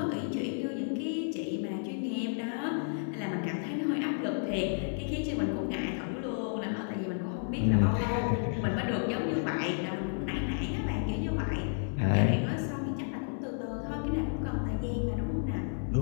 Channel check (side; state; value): right; silent; digital silence